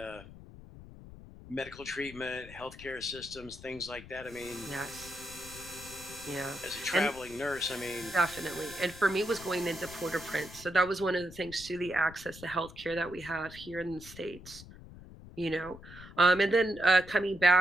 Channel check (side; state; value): left; noise; rumble, 17 dB below the sound